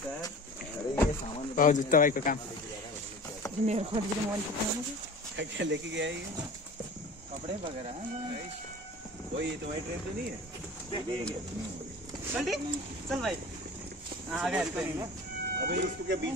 भाउजू तपाईँको काम क्या लेके गया ये? कपड़े वगैरह वही तुम्हारी ट्रेन तो नहीं है? चल भाई आ गया। अबे उसको क्या बीच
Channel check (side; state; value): both; normal; correlation 0.39